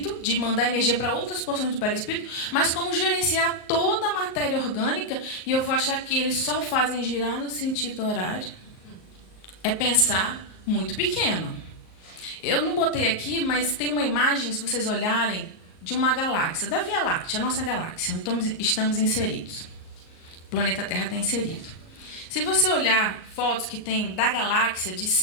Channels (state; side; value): late; right; 38 ms